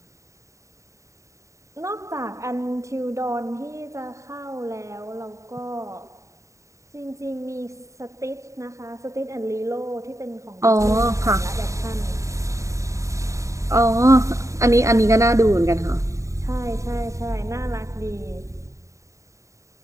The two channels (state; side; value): late; left; 0.15 ms